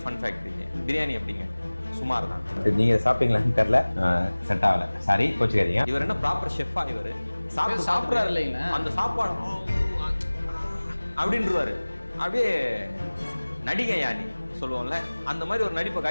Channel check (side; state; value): both; inverted; correlation -1.00